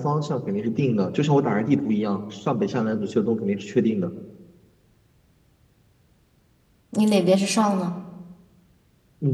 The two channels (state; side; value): identical; both; correlation 1.00